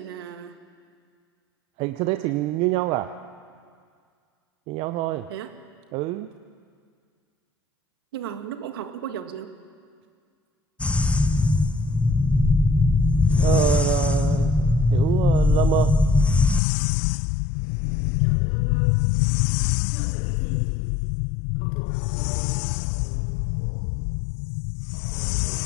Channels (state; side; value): drops out; right; at 16.6 s